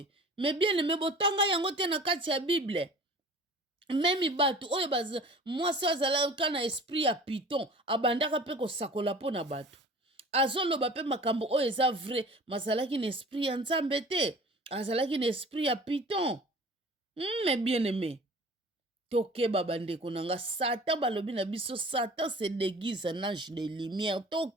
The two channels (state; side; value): normal; both; correlation 0.44